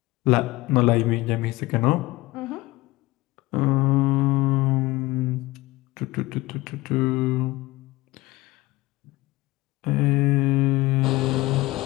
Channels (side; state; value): right; quieter; 20.0 dB